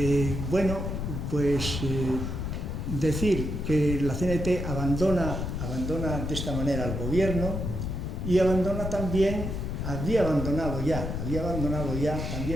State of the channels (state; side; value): noise; left; rumble, 3 dB below the sound